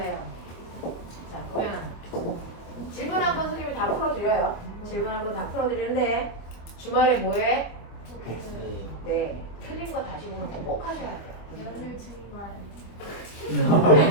자, 그러면 질문 한 번 선생님이 다 풀어드려요. 질문 한 번 다 풀어드리는데 주말에 뭐해? 네, 틀린 거 다시 보는 거 꼭 하셔야 돼요. 연휴 증말.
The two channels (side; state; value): right; late; 25 ms